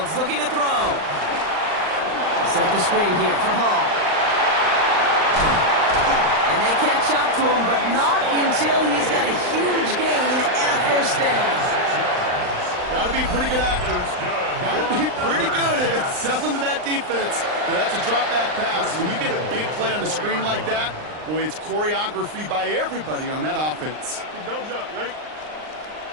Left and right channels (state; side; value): late; left; 39 ms